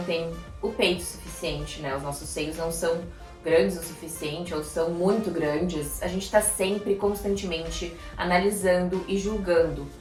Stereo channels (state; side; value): identical; both; correlation 1.00